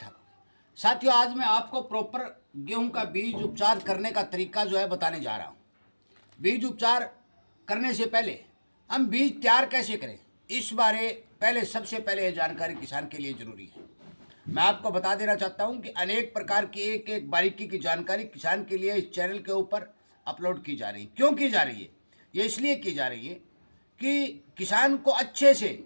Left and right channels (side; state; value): both; inverted; correlation -1.00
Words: ठाक हो। साथियों आज मैं आपको प्रॉपर गेहूं का बीज उपचार करने का तरीका जो है बताने जा रहा हूं। बीज उपचार करने से पहले हम बीज तैयार कैसे करें इस बारे पहले सबसे पहले ये जानकारी किसान के लिए जरूरी है। मैं आपको बता देना चाहता हूं कि अनेक प्रकार की एक एक बारीकी की जानकारी किसान के लिए इस चैनल के ऊपर अपलोड की जा रही है। क्यों की जा रही है? ये इसलिए की जा रही है कि किसान को अच्छे से